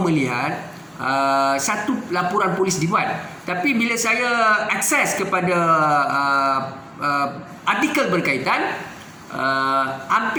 melihat satu laporan polis dibuat. Tapi bila saya akses kepada artikel berkaitan,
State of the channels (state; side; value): identical; both; correlation 1.00